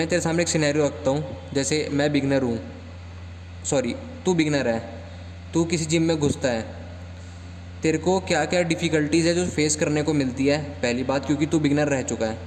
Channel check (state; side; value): identical; both; correlation 1.00